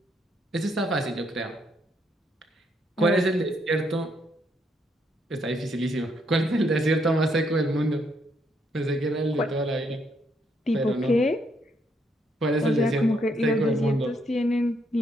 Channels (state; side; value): normal; both; correlation 0.74